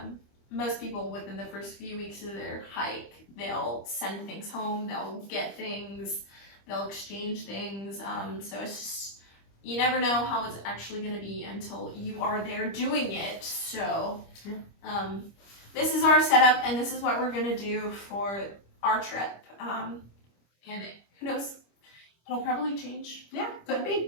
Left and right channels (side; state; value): right; late; 25 ms